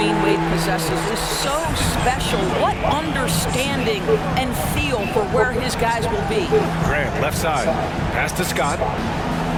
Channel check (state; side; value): identical; both; correlation 1.00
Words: Wade possesses is so special. What understanding and feel for where his guys will be. Grant, left side. Pass to Scott.